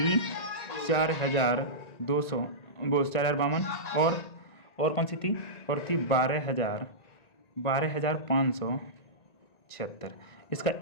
4200 वो 4052 और कौन सी थी, और थी 12576, इसका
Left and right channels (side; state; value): right; late; 1.9 ms